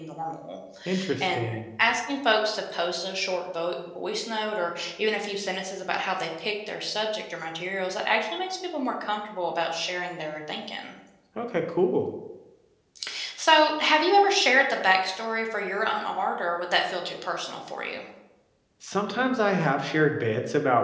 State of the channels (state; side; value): identical; both; correlation 1.00